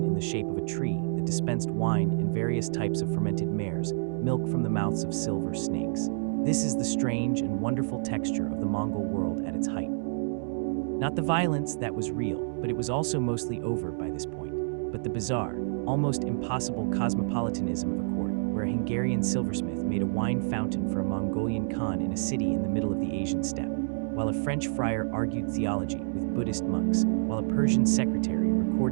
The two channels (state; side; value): silent; left; digital silence